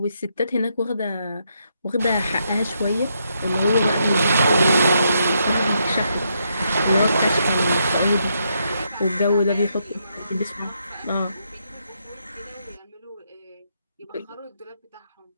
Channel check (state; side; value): inverted; both; correlation -0.78